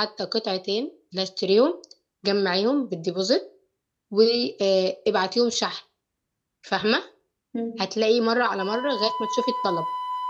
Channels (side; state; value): both; identical; correlation 1.00